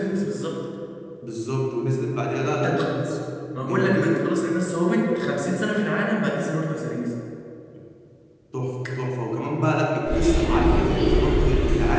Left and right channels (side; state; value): both; identical; correlation 1.00